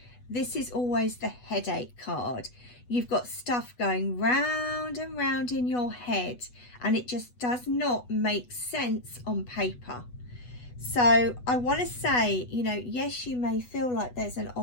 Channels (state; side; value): late; right; 8.1 ms